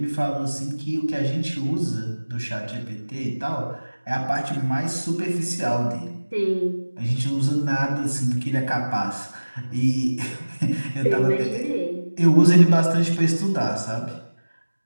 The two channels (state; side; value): inverted; both; correlation -1.00